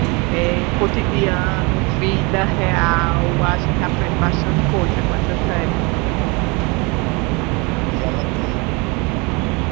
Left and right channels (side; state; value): left; quieter; 28.4 dB